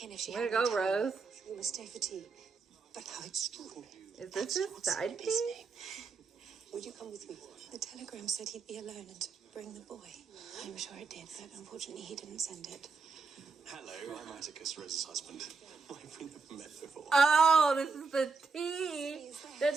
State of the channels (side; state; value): left; quieter; 4.6 dB